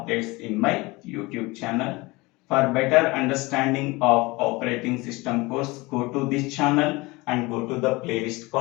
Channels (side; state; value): right; quieter; 23.1 dB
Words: in my YouTube channel. For better understanding of operating system course, go to this channel and go to the playlist